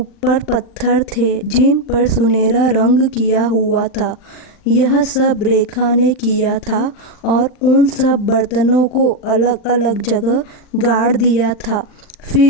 पत्थर थे जिन पर सुनहरा रंग किया हुआ था। यह सब रेखा ने किया था और उन सब बर्तनों को अलग अलग जगह गाड़ दिया था।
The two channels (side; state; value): right; late; 39 ms